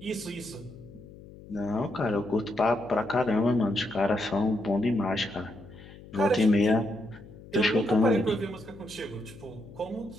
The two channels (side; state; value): left; noise; hum, 18 dB below the sound